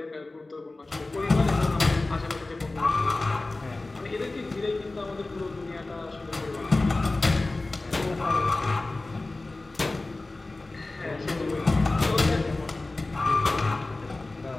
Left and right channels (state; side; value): quieter; right; 3.1 dB